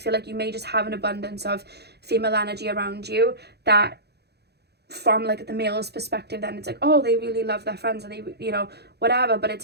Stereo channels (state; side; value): late; left; 0.48 ms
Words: like you may just have an abundance of female energy around you that, from like the male's perspective, then it's like, oh, they really love their friends, and they, you know, whatever. But it's